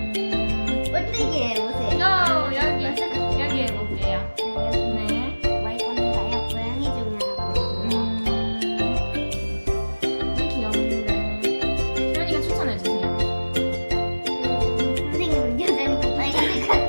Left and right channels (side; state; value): both; inverted; correlation -1.00